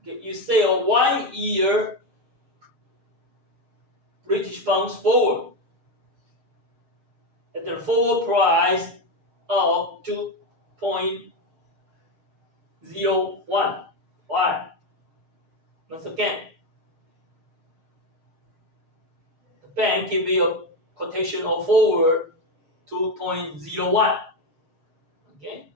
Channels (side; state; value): left; late; 6.5 ms